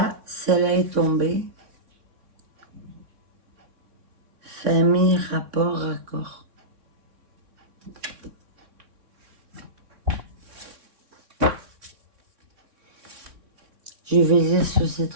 celle-là est tombée. Famille, rapport, raccord. Je vais lire sur ces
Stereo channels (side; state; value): left; late; 3.6 ms